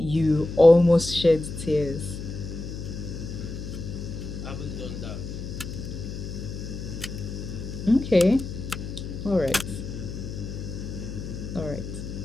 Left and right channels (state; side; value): noise; left; hum, 8 dB below the sound